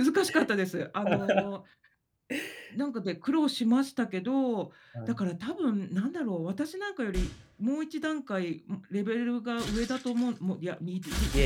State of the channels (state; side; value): identical; both; correlation 1.00